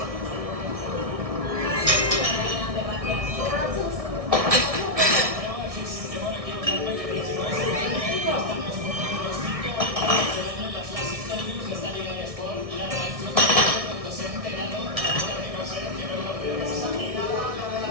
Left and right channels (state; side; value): late; left; 1.6 ms